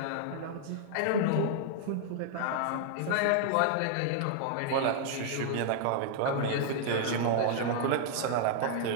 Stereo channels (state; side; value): different; both; correlation -0.01